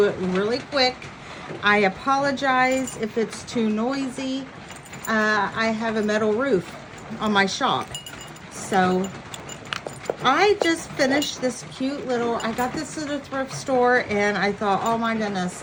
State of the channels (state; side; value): identical; both; correlation 1.00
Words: it really quick. I apologize if it's too noisy. I have a metal roof on my shop. So I just finished this cute little, I got this at a thrift store and I thought, oh my